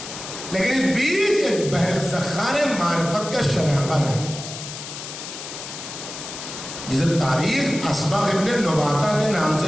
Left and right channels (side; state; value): left; noise; hiss, 10 dB below the sound